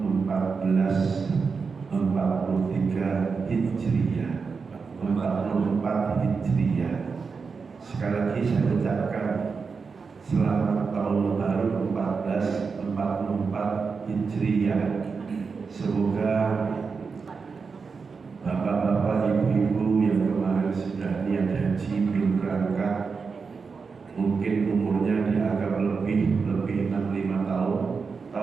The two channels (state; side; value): quieter; left; 5.1 dB